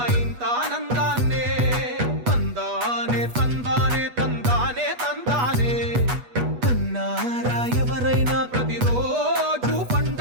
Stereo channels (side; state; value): left; late; 8.2 ms